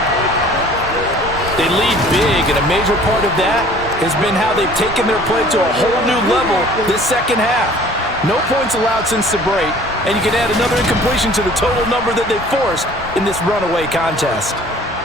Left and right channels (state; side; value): normal; both; correlation 0.50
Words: They lead big, and a major part of that has been how they've taken their play to a whole new level this second half. No points allowed since the break, and you can add another incompletion to the total number that they forced in this runaway contest.